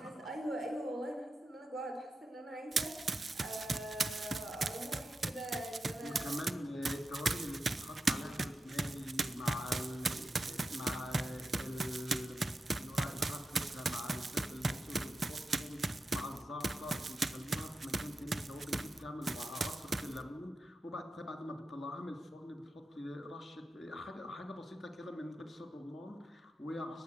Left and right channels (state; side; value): normal; both; correlation 0.90